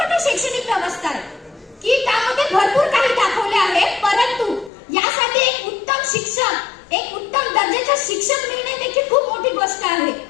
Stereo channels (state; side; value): drops out; right; at 4.7 s